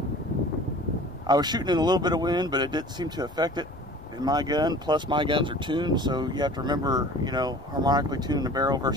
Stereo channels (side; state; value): both; normal; correlation 0.44